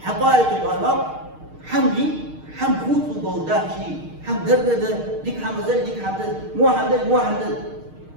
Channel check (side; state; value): left; late; 6.5 ms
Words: حقائق الأمر حمدي حم خوت وجوداه شيء حم درده ديك حم زل ديك حم زل مو حم زل مو حم زل